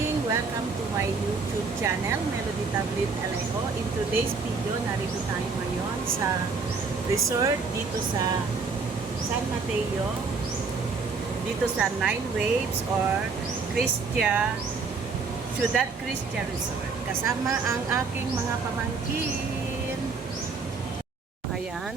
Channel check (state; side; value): quieter; left; 4.6 dB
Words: Welcome to my YouTube channel, Melody Tablet Alejo. In today's video, narito tayo ngayon sa resort dito sa San Mateo, dito sa Nine Waves or Ciudad Cristia Resort. Kasama ang aking mga pamangkin.